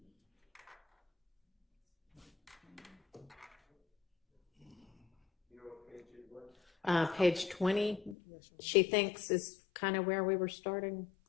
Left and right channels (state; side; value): drops out; right; at 8.2 s